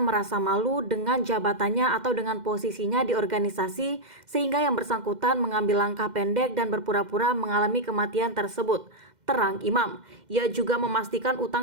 merasa malu dengan jabatannya atau dengan posisinya di organisasi, sehingga yang bersangkutan mengambil langkah pendek dan berpura-pura mengalami kematian tersebut. Terang Imam. Ia juga memastikan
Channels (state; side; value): late; left; 2.1 ms